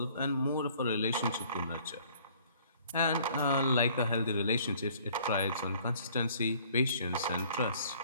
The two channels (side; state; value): both; inverted; correlation -0.56